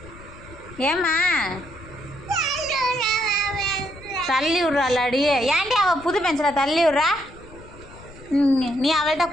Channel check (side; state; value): left; noise; rumble, 19 dB below the sound